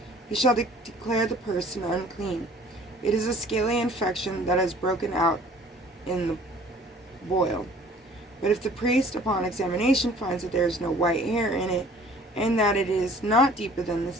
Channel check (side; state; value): both; normal; correlation 0.52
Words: he shall declare the person unclean. It is a scaly infection that has broken out in the boil. But if the priest, upon examination, finds that there is no white hair in it, and that it is not deeper than the